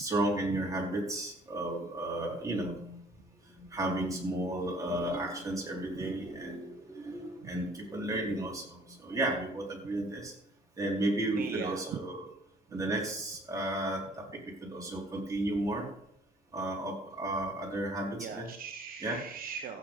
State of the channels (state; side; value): normal; both; correlation 0.56